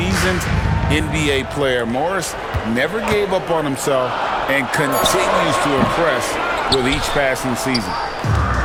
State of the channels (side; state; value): both; identical; correlation 1.00